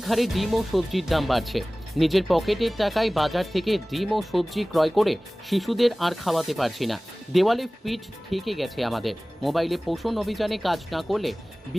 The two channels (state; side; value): normal; both; correlation 0.98